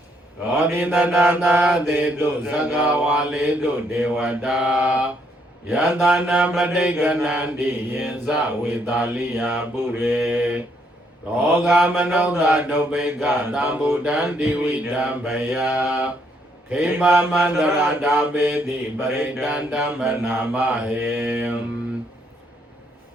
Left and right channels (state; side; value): normal; both; correlation 0.72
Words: သောတိတနာနာသေတုသက္ကဝါလေတုဒေဝတာယတနာပဋိကနန္တိယင်ဇဝေတာလိယပုရေရောဂမနောသဒုပိကသံဗုဒ္ဓံတိဝိဓမ္ပယခေမမန္တရာတာပေတိပရိတန္တမနာမဟေ